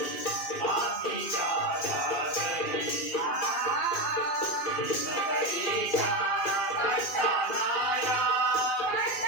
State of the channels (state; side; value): late; right; 2.4 ms